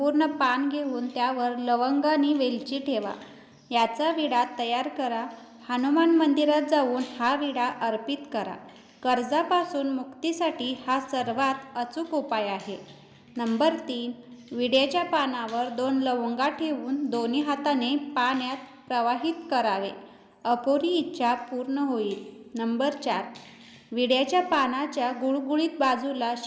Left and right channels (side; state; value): both; identical; correlation 1.00